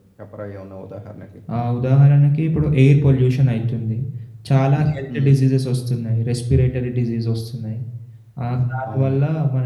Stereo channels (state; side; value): identical; both; correlation 1.00